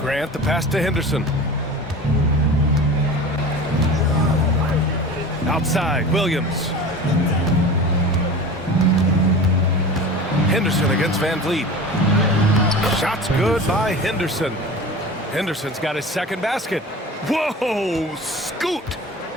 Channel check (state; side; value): normal; both; correlation 0.35